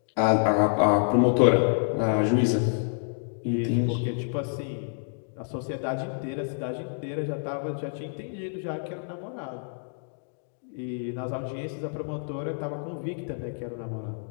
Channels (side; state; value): right; silent; digital silence